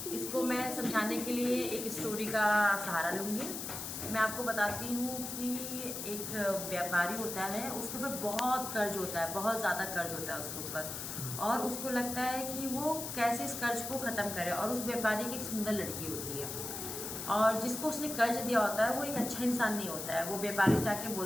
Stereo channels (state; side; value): noise; left; hiss, 6 dB below the sound